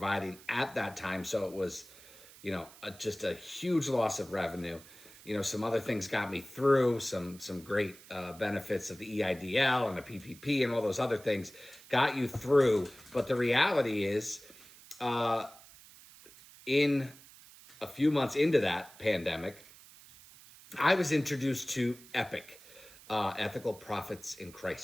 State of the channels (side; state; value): right; noise; hiss, 21 dB below the sound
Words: at that time. So it was, just a huge loss of revenue. Some other things got me through, some great benefits of the EIDL and the PPP and all those other things got you through. But the reality is, in a few months into that pandemic, I was introduced to EPIC, Ethical Profits in